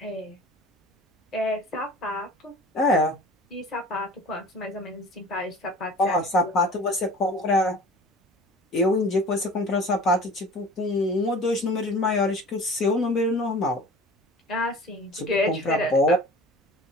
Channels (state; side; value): normal; both; correlation 0.42